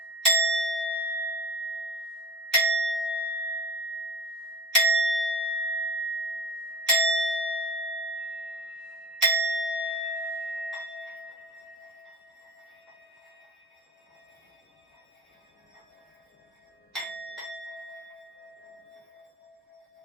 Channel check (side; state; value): both; normal; correlation 0.40